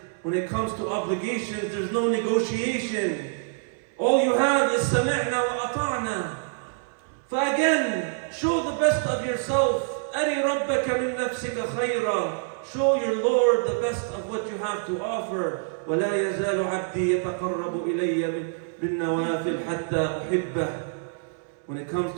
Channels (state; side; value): silent; left; 61 dB below the other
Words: When it comes to obligations, there's no negotiation. All you have is sami'na wa ata'na. Again, show the best of yourself. أَرِ رَبَّكَ مِن نَفْسِكَ خَيْرًا. Show your Lord the best of what you have to offer. وَلَا يَزَالُ عَبْدِي يَتَقَرَّبُ إِلَيَّ بِالنَّوَافِلِ حَتَّى أُحِبَّهُ. When it comes